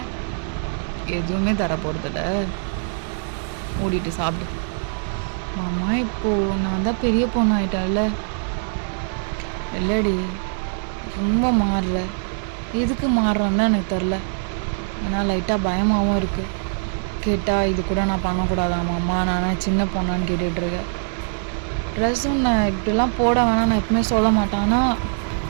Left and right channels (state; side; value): silent; left; digital silence